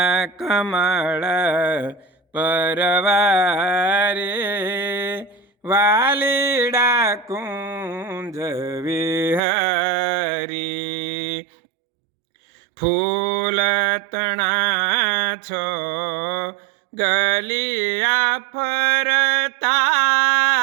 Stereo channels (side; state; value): left; drops out; at 9.4 s